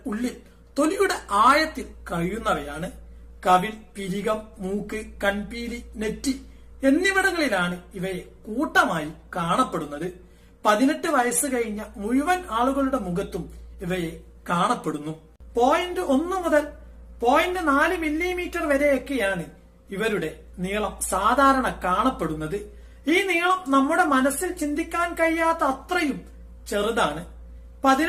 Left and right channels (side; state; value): both; identical; correlation 1.00